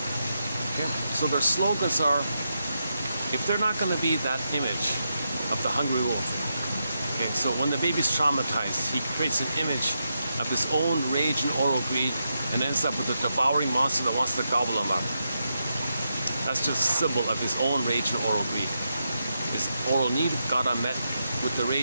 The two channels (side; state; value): both; inverted; correlation -0.85